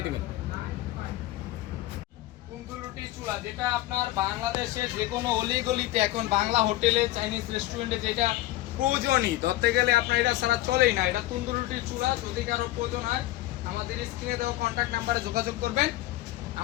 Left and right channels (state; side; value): quieter; right; 16.6 dB